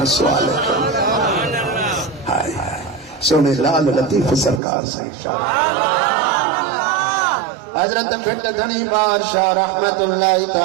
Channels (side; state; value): left; drops out; at 4.6 s